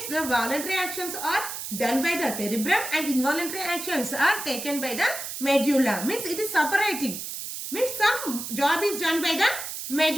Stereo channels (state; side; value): noise; right; hiss, 7 dB below the sound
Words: the voluntary actions are done by the cerebrum and involuntary actions are taken by the medulla. Means it is separating. Means some job is done by the